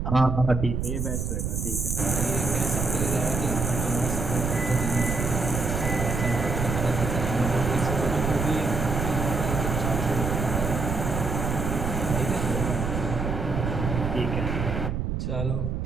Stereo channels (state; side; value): noise; right; rumble, 1 dB below the sound